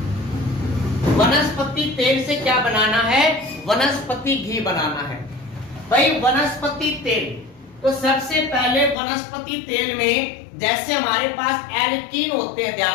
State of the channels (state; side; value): drops out; right; at 9.0 s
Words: वनस्पति तेल से क्या बनाना है? वनस्पति घी बनाना है। भाई वनस्पति तेल, तो सबसे पहले वनस्पति तेल में जैसे हमारे पास एल्कीन होते हैं,